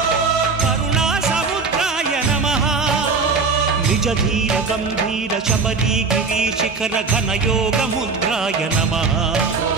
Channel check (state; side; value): quieter; left; 4.6 dB